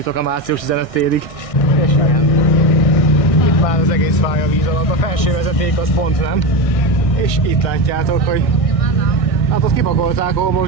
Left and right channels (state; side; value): late; right; 1.6 ms